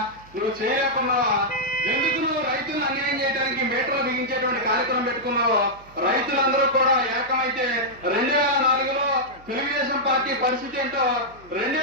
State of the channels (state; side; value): noise; right; hum, 24 dB below the sound